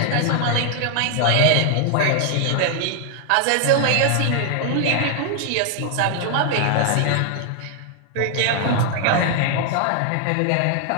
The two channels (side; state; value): both; different; correlation 0.00